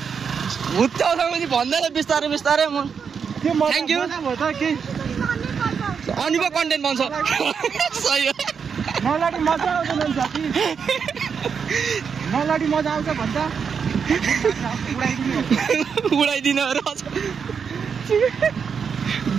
भुत्याउँछ मुजी भन्दैन बिस्तारै बिस्तारै म थ्याङ्क यू अनि पो कन्टेन्ट बन्छ सही हो नलाडी मजा आउँदैन साथी नलाडी मजा आउँछ भन्छ उडाइदिनु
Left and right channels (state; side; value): quieter; left; 6.4 dB